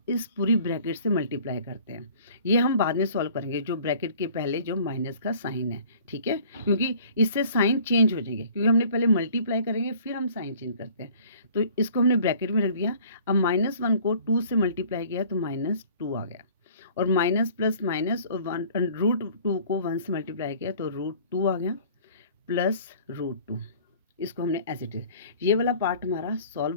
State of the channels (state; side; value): inverted; both; correlation -0.50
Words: इस पूरी ब्रैकेट से मल्टीप्लाई करते हैं, ये हम बाद में सॉल्व करेंगे, जो ब्रैकेट के पहले जो माइनस का साइन है, ठीक है, क्योंकि इससे साइन चेंज हो जाएंगे, क्योंकि हमने पहले मल्टीप्लाई करेंगे फिर हम साइन चेंज करते हैं। तो इसको हमने ब्रैकेट में रख दिया। अब -1 को 2 से मल्टीप्लाई किया तो -2 आ गया, और माइनस प्लस माइनस, और √2 को 1 से मल्टीप्लाई किया तो √2 आ गया, प्लस √2। इसको हमने एज इट इज, ये वाला पार्ट हमारा